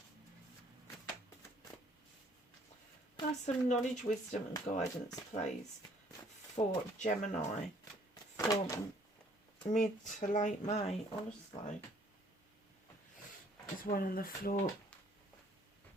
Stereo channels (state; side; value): normal; both; correlation 0.61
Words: Have some knowledge, wisdom and guidance, please, for Gemini for mid to late May, honestly. There's one on the floor.